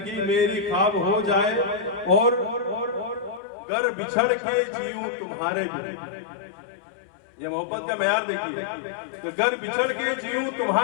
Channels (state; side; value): drops out; right; at 3.4 s